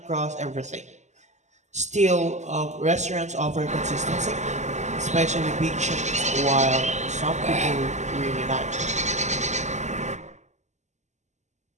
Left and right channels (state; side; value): late; left; 0.34 ms